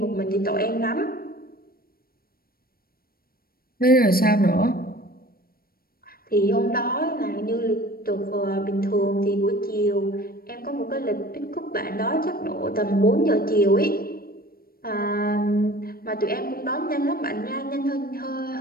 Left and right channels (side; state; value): right; late; 0.43 ms